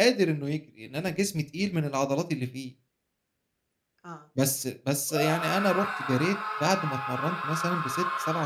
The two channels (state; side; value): identical; both; correlation 1.00